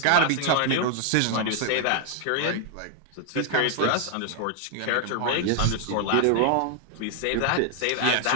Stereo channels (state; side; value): different; both; correlation 0.00